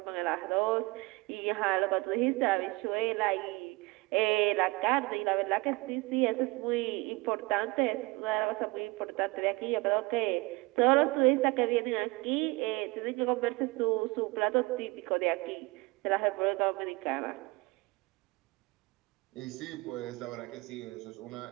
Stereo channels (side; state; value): left; quieter; 23.9 dB